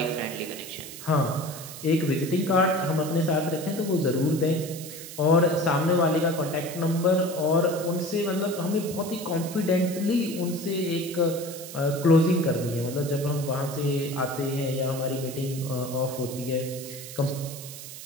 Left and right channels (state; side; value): noise; right; hiss, 12 dB below the sound